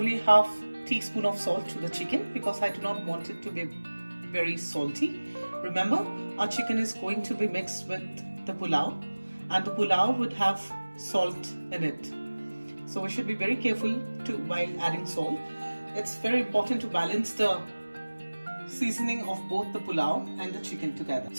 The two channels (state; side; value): inverted; both; correlation -1.00